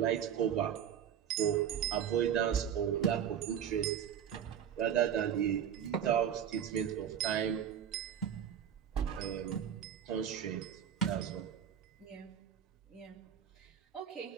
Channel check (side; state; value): left; quieter; 9.0 dB